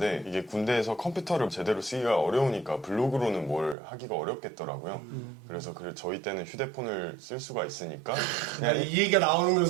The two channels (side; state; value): left; drops out; at 3.8 s